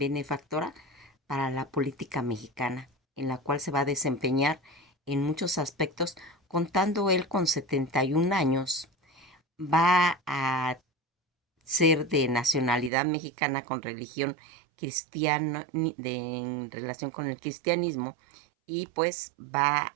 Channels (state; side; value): drops out; left; at 12.9 s